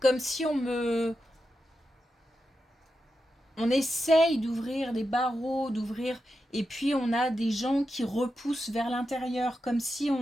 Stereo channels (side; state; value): both; normal; correlation 0.89